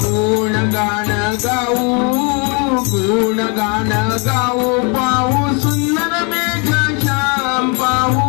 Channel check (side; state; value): right; quieter; 33.6 dB